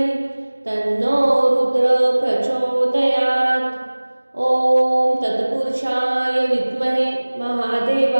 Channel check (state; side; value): inverted; both; correlation -1.00